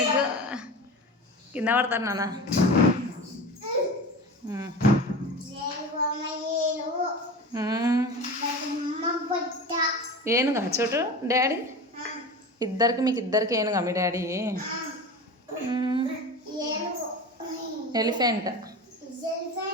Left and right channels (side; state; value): both; normal; correlation 0.31